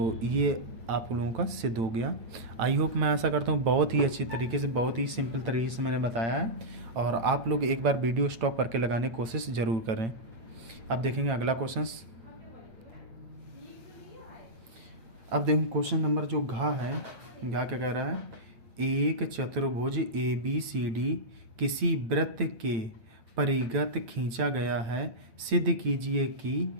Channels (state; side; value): late; left; 8.9 ms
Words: ये आप लोगों का सिद्ध हो गया। आई होप, मैं आशा करता हूँ बहुत ही अच्छी तरीके से, बहुत ही सिंपल तरीके से मैंने बताया है, और आप लोग एक बार वीडियो स्टॉप करके लगाने की कोशिश ज़रूर करें। अब देखेंगे अगला क्वेश्चन। अब देखें क्वेश्चन नंबर जो घा क्या कह रहा है, एक चतुर्भुज ए बी सी डी किसी वृत्त के परिगत खींचा गया है, सिद्ध कीजिए कि